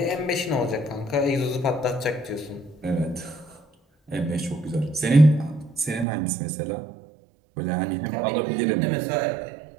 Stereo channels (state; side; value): drops out; left; at 6.1 s